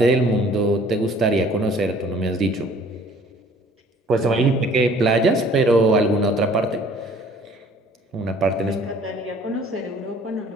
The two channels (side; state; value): both; normal; correlation 0.54